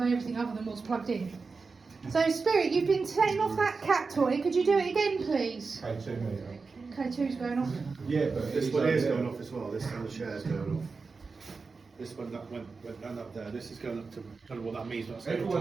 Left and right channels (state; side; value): quieter; left; 4.5 dB